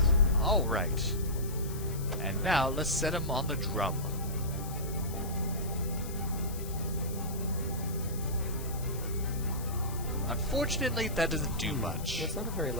Alright. And now, let's set him on the drum. Unfortunately, that doesn't do much. That's not a very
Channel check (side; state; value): left; noise; hiss, 14 dB below the sound